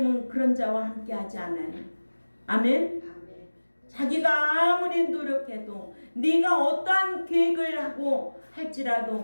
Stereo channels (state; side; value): inverted; both; correlation -1.00